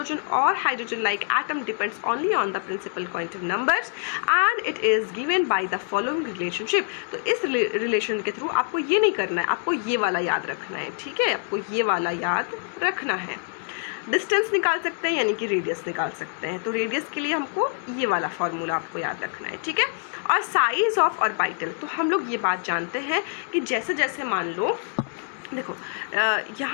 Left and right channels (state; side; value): silent; right; 61 dB below the other